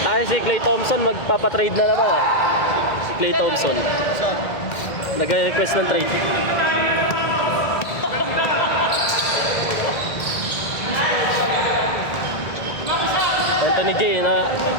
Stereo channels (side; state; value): right; late; 1.7 ms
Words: Ay, si Klay Thompson magpapatrade na naman ah. Si Klay Thompson. Saan? Nag-request ng trade. Anthony J, na